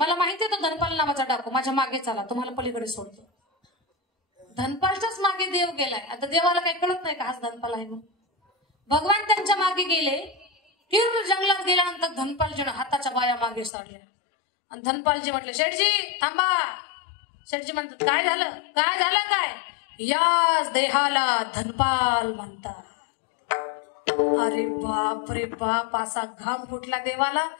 माहिती आहे तो धनपाल नावाचा डाकू. माझ्या मागे चला तुम्हाला पलीकडे सोडतो. धनपालच्याच मागे देव गेलाय. आता देवाला काही कळत नाही का हाच धनपाल आहे म्हणून. भगवान त्यांच्या मागे गेले. तीव्र जंगलात गेल्यानंतर धनपालजीनं हाताच्या बाया मागे सारल्या आणि धनपालजी म्हटले शेठजी थांबा. शेठजी म्हणतात काय झालं काय? याच देहाला धनपाल म्हणतात. अरे बाप रे बाप. असा घाम फुटला देवाला.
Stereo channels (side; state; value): right; drops out; at 13.7 s